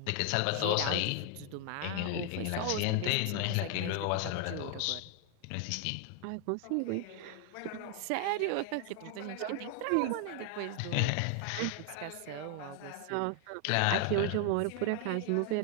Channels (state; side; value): different; both; correlation 0.00